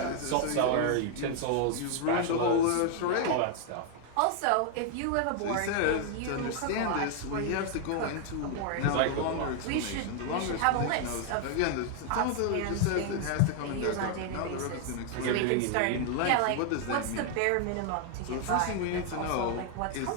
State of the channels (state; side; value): different; both; correlation 0.00